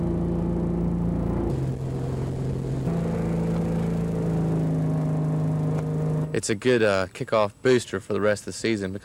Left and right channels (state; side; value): identical; both; correlation 1.00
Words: It's a good kickoff booster for the rest of the season